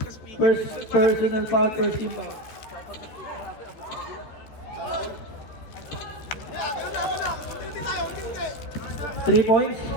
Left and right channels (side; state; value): right; late; 13 ms